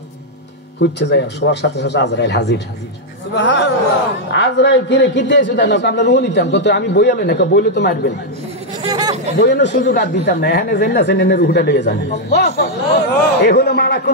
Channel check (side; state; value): both; normal; correlation -0.02